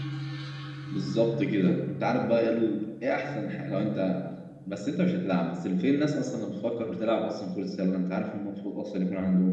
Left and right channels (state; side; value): identical; both; correlation 1.00